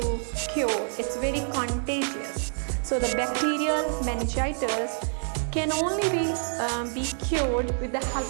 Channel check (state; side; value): silent; left; 60 dB below the other